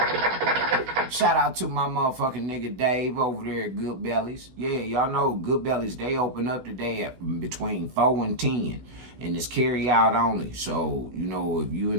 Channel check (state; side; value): late; left; 16 ms